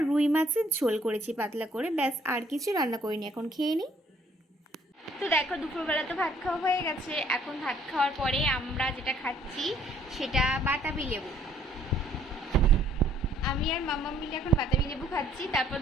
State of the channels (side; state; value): both; normal; correlation 0.62